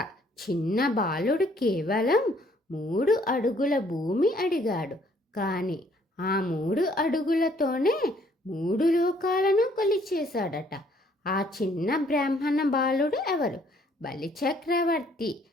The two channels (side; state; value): both; normal; correlation 0.63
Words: చిన్న బాలుడు కేవలం 3 అడుగుల భూమి అడిగాడు. కానీ ఆ 3 అడుగులతోనే 3 లోకాలను కొలిచేశాడట. ఆ చిన్న బ్రాహ్మణ బాలుడు ఎవరు? బలిచక్రవర్తి.